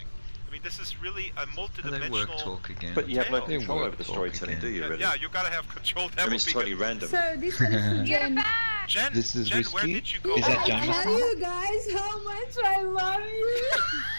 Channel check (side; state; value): both; inverted; correlation -1.00